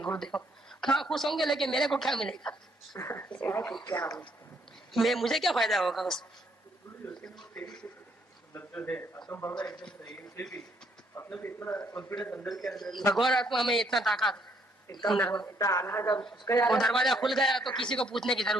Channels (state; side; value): normal; both; correlation 0.69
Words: गुरुदेव। कहाँ खुश होंगे, लेकिन मेरे को क्या मिलेगा, क्या मुझे क्या फायदा होगा उसमें। भगवान आत्मा में इतना ताकत, वो दरवाजा खुल गया तो किसी को पूछने की